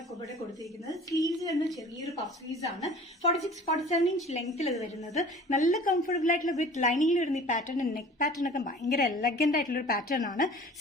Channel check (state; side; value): normal; both; correlation 0.45